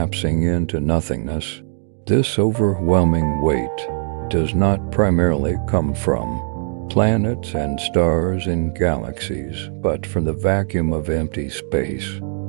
into nothingness. This overwhelming weight does not primarily come from planets and stars in galaxies, but from the vacuum of empty space.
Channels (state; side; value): silent; left; digital silence